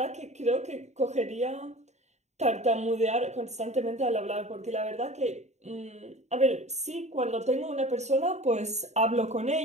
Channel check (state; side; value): late; left; 0.33 ms